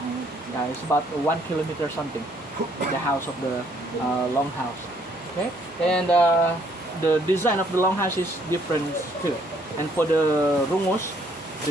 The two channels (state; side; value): normal; both; correlation 0.66